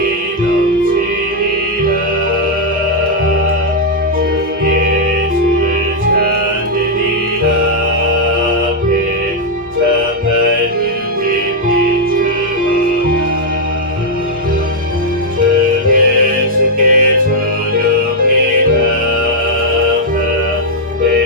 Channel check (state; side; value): normal; both; correlation -0.03